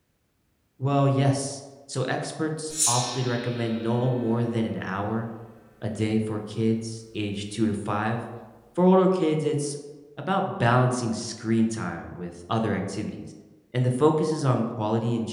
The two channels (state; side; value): identical; both; correlation 1.00